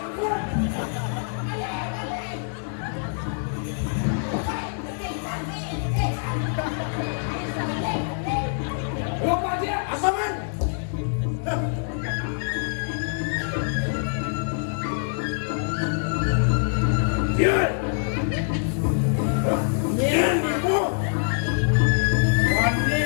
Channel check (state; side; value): silent; right; digital silence